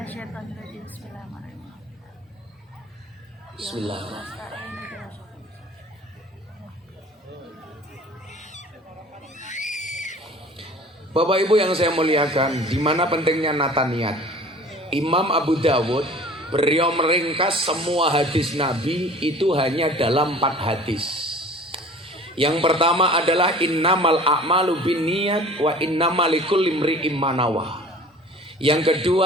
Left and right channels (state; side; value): normal; both; correlation 0.45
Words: rajim. Bismillahirrahmanirrahim. Bismillahirrahmanirrahim. Bapak Ibu yang saya muliakan, di mana pentingnya nata niat. Imam Abu Dawud beliau meringkas semua hadis Nabi itu hanya dalam 4 hadis. Yang pertama adalah innamal a'malu binniyat wa innamal likulli imri'in ma nawa. Yang